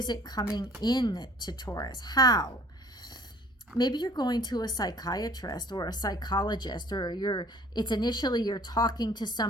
it coming in to Taurus? How? Maybe you're going to a psychiatrist or a psychologist, or you're talking to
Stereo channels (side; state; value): both; normal; correlation 0.53